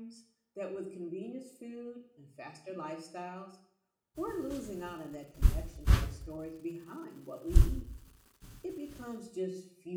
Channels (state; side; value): identical; both; correlation 1.00